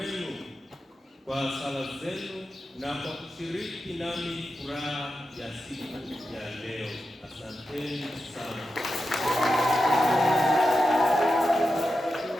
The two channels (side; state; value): both; normal; correlation 0.90